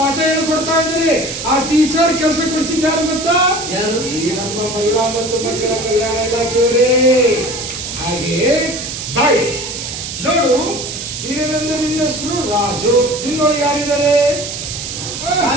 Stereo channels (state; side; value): noise; right; hiss, 7 dB below the sound